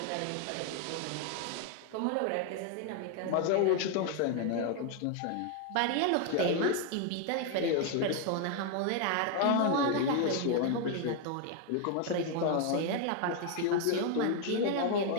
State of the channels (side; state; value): both; different; correlation 0.01